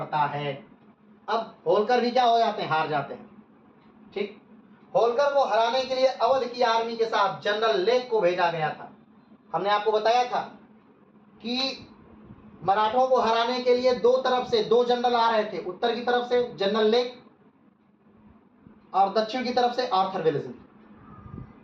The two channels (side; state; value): both; identical; correlation 1.00